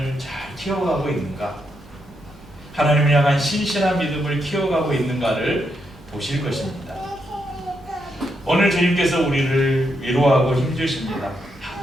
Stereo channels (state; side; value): noise; right; rumble, 25 dB below the sound